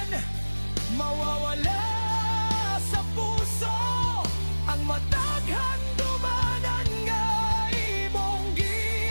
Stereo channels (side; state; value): both; inverted; correlation -1.00